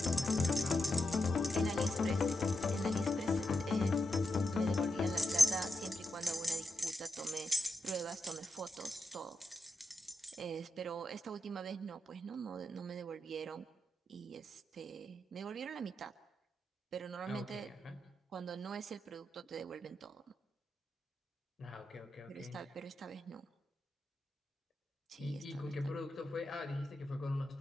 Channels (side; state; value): both; normal; correlation 0.86